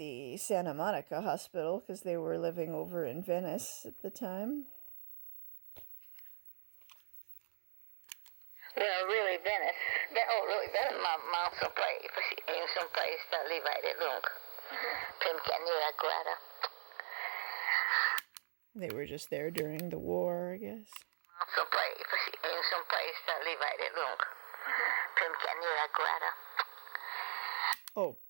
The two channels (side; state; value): left; silent; digital silence